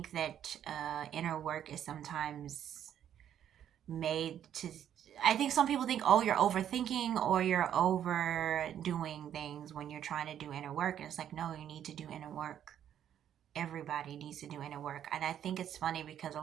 that inner work is sometimes made to. I think some people think, oh, you're overthinking or you're overdoing things when you're trying to do inner work. And it's like, no, you need to do inner work. Everybody needs to do inner work. And I think it's funny because a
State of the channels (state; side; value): quieter; left; 10.1 dB